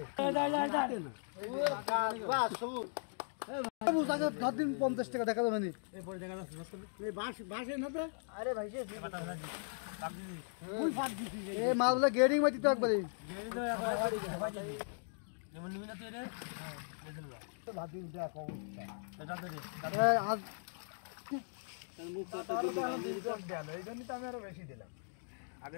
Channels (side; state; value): right; silent; digital silence